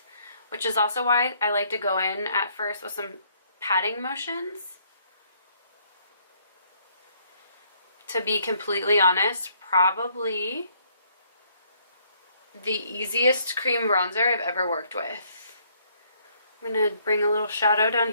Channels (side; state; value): both; inverted; correlation -0.67